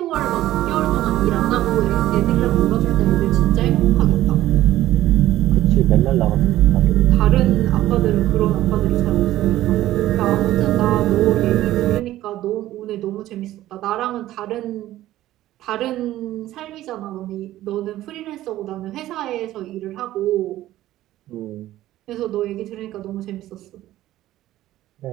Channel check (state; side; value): quieter; left; 14.6 dB